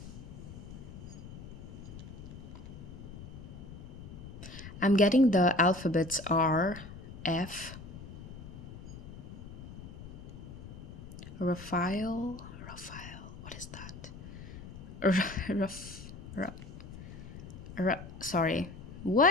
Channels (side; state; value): left; noise; rumble, 12 dB below the sound